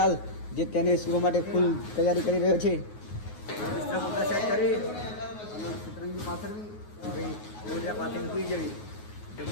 જે તેને સુવા માટે ફૂલ તૈયારી કરી રહ્યો છે. સેટ કરી અને સતરંગી પાથરવી, હવે ગોદરા પાથરીને સૂઈ જવી.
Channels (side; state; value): right; late; 9.5 ms